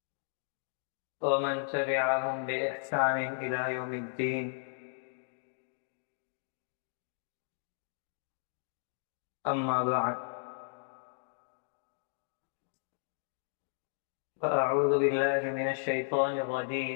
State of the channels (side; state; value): right; silent; digital silence